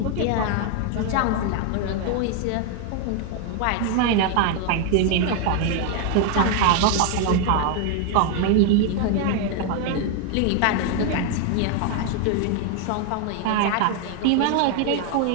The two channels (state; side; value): different; both; correlation 0.00